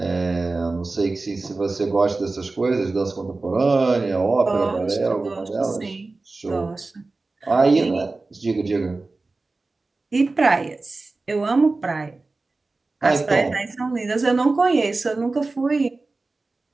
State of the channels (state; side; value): quieter; left; 3.5 dB